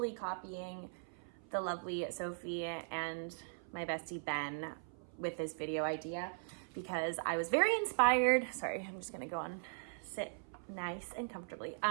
copying the lovely Sophie and my bestie Ben with this video idea because I was very inspired. Sorry, I'm just gonna go on, sit nice and comfortably.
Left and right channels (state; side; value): silent; left; 51 dB below the other